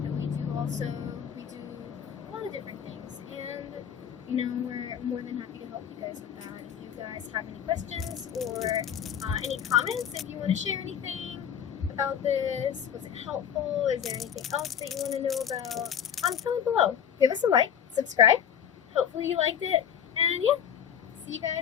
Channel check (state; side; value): quieter; right; 8.6 dB